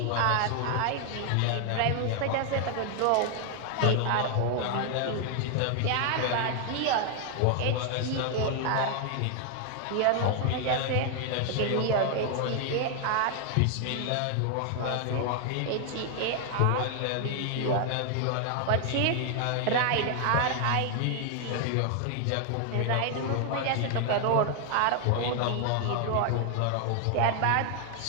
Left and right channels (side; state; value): both; different; correlation 0.00